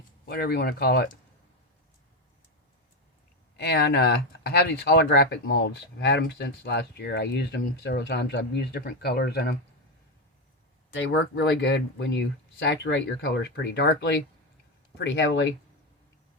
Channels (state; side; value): normal; both; correlation 0.11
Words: whatever you want to call it. And I have these holographic molds. I've had them since last year. I used them several times. I've used different colors in them. They work really good when you saturate your colors pretty darkly, pretty heavily.